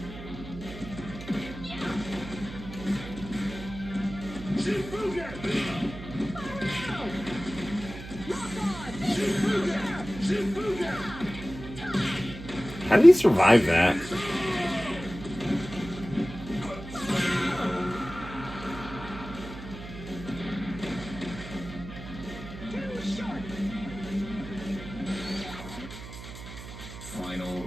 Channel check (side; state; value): right; noise; hum, 12 dB below the sound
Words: Shifugen! Shifugen! Shifugen! How did he survive that? Final